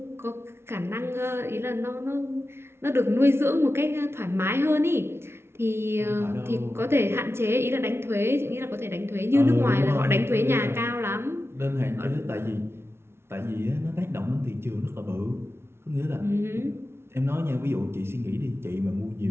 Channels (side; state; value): left; late; 0.12 ms